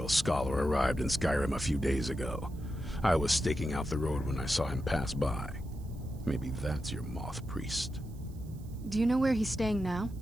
scholar arrived in Skyrim a few days ago. I was staking out the road when I saw him pass by. Maybe that's your Moth Priest. Do you know where he's staying now?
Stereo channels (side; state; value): right; noise; hiss, 27 dB below the sound